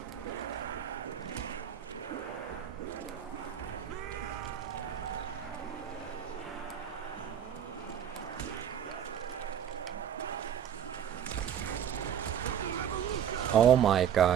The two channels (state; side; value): quieter; left; 9.2 dB